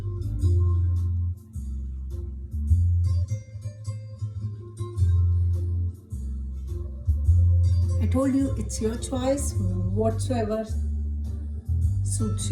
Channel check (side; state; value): both; identical; correlation 1.00